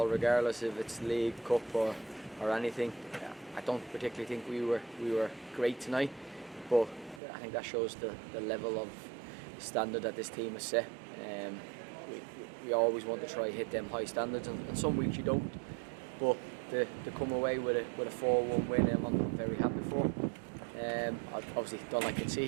regardless if it's league, cup or anything. I don't particularly think we were great tonight, but I think that shows the level of standard that this team has set. We always want to try hit them high standards, and some weeks you don't. But to come away with a 4-1 win, I'm very happy for. I obviously don't like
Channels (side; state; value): left; drops out; at 7.2 s